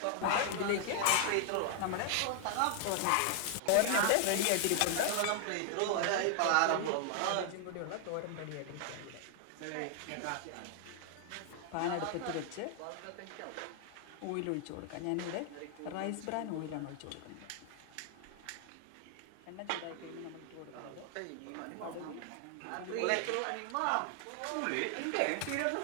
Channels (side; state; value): both; different; correlation 0.00